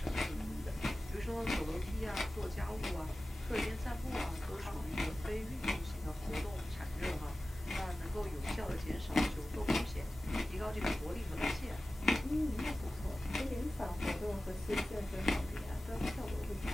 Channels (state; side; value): normal; both; correlation 0.96